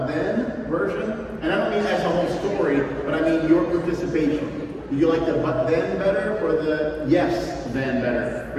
then version? And I don't mean as a whole story, but I mean your participation. Did you like the but then better or the yes then better?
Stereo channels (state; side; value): identical; both; correlation 1.00